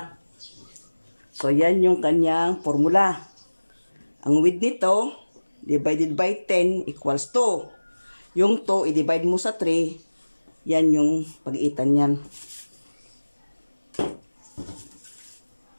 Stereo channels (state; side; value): inverted; both; correlation -1.00